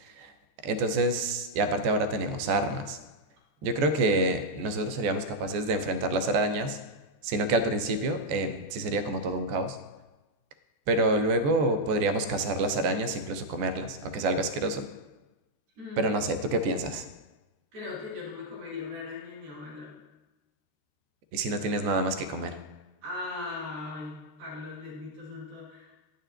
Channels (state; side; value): late; left; 14 ms